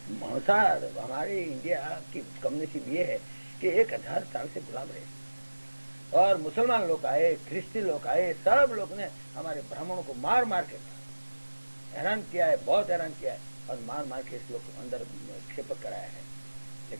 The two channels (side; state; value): both; inverted; correlation -1.00